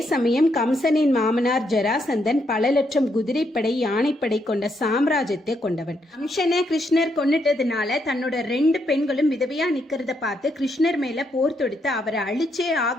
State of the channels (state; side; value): normal; both; correlation 0.77